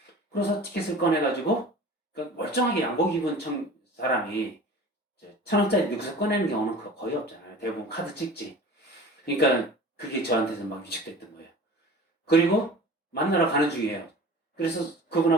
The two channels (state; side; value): normal; both; correlation 0.40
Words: 그래서 티켓을 꺼내가지고, 그러니까 멀쩡하게 양복 입은 사람이 1,000원짜리 넣고서 꺼내는 경우는 거의 없잖아요. 대부분 카드 찍지. 그러니까 그게 저한테는 막 위축됐던 거예요. 그리고 만나러 가는 중이에요. 그래서